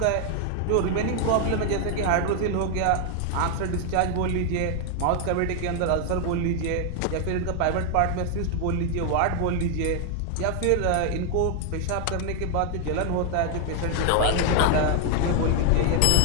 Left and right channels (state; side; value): different; both; correlation 0.00